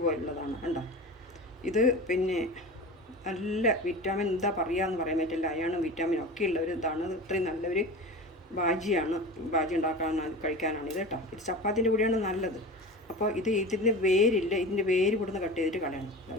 കണ്ടോ. ഇത് പിന്നെ നല്ല വിറ്റാമിൻ എന്താ പറയുകയെന്ന് പറയാൻ പറ്റില്ല, അയണും വിറ്റാമിനും ഒക്കെ ഉള്ള ഒരു ഇതാണ്. ഇത്രയും നല്ലൊരു ബാജി കഴിക്കാനാണ് ഇത് കേട്ടോ. ഇത് ചപ്പാത്തിൻ്റെ കൂടെയാണ് നല്ലത്. അപ്പോൾ ഇതിൻ്റെ വേരില്ല, ഇതിൻ്റെ വേര് ഇവിടുന്ന് കട്ട് ചെയ്തിട്ട് കളയണം.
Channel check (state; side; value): normal; both; correlation 0.31